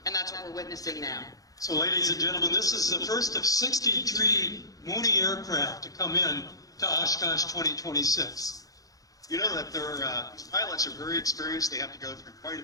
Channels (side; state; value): right; late; 0.17 ms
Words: And that's what we're witnessing now. So ladies and gentlemen, this is the first of 63 Mooney aircraft to come in to Oshkosh 2026. You know that these pilots are very experienced. They have to go through quite a